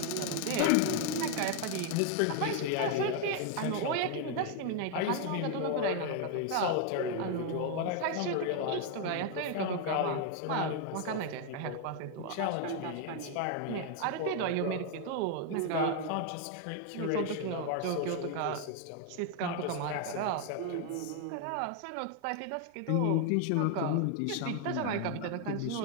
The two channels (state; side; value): different; both; correlation 0.00